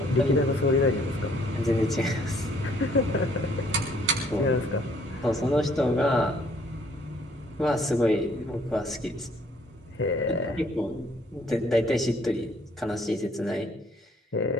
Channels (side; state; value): both; normal; correlation 0.62